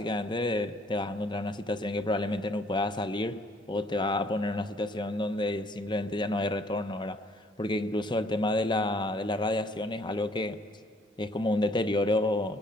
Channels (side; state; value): both; normal; correlation 0.62